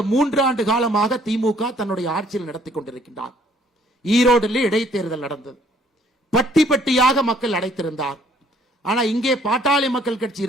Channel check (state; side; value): normal; both; correlation 0.62